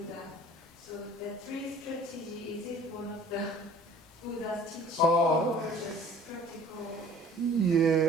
So the 3 strategy, is it one of the Buddha's teachings or just practical?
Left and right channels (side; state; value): both; normal; correlation 0.49